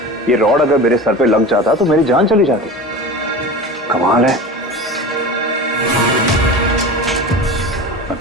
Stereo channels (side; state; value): both; normal; correlation 0.31